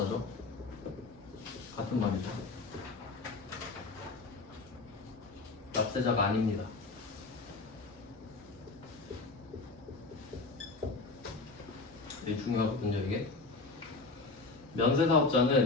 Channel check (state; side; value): quieter; right; 3.7 dB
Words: 같은 말이죠. 납세자가 아닙니다. 되게 중요하거든요 이게.